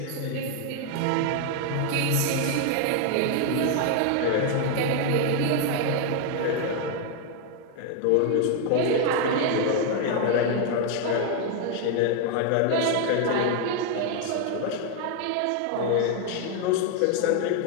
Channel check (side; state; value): both; different; correlation 0.00